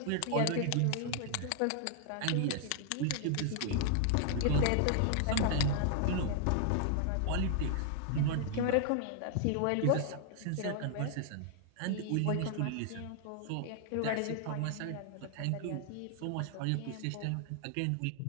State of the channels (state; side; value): different; both; correlation 0.00